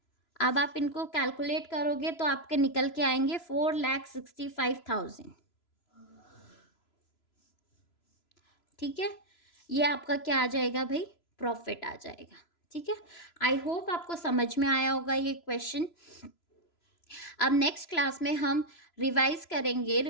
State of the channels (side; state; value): right; late; 3.0 ms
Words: अब आप इनको कैलकुलेट करोगे तो आपके निकल के आएंगे 4,65,000। ठीक है, ये आपका क्या आ जाएगा भाई? प्रॉफिट आ जाएगा। ठीक है, आई होप आपको समझ में आया होगा ये क्वेश्चन। अब नेक्स्ट क्लास में हम रिवाइज करेंगे